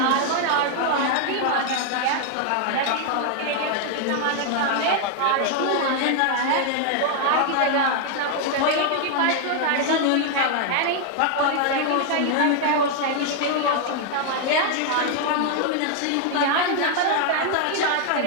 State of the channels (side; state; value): both; different; correlation 0.00